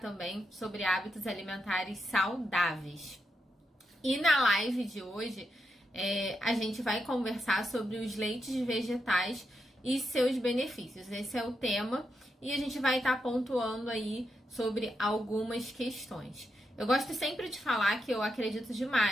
também sobre hábitos alimentares saudáveis. E na live de hoje, a gente vai conversar sobre os leites vegetais e seus benefícios. Esse é o tema e a gente vai estar pontuando aí sobre algumas questões. Eu gosto sempre de falar que eu acredito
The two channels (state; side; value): normal; both; correlation 0.84